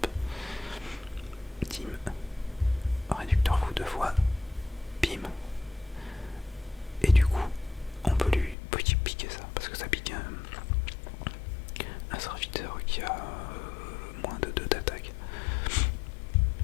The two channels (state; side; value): drops out; right; at 8.6 s